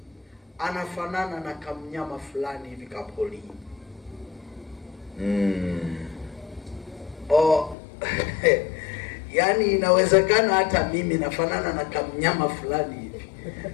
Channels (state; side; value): drops out; right; at 7.8 s